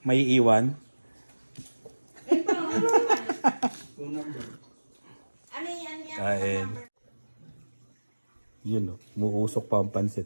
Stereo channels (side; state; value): both; inverted; correlation -1.00